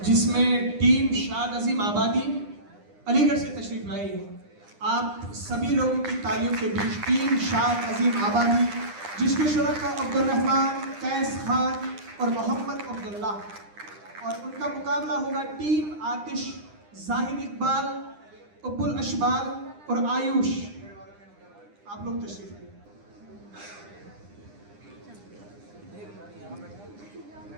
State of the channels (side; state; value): left; late; 9.9 ms